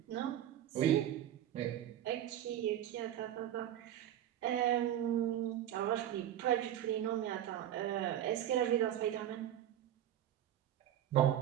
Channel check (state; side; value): quieter; left; 11.5 dB